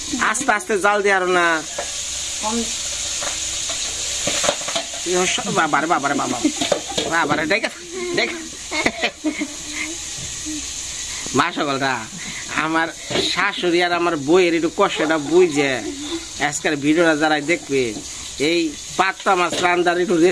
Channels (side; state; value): both; identical; correlation 1.00